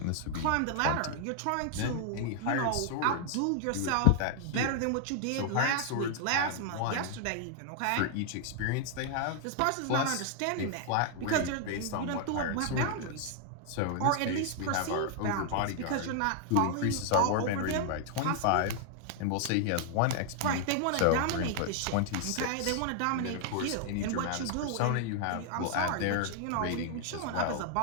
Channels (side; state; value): both; different; correlation 0.00